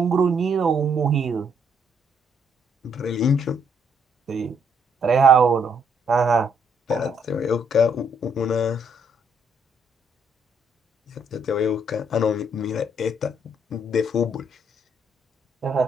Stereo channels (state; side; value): normal; both; correlation 0.70